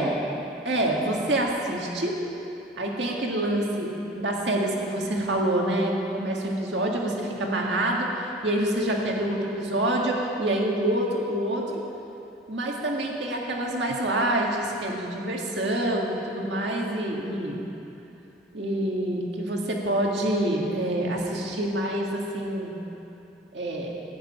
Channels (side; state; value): both; normal; correlation 0.37